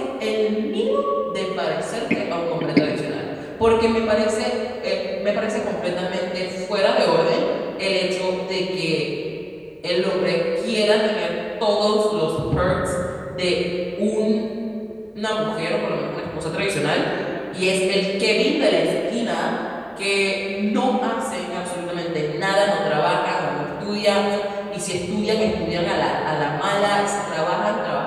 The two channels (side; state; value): both; identical; correlation 1.00